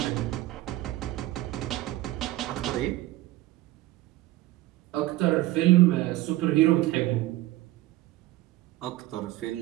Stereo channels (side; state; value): left; quieter; 16.6 dB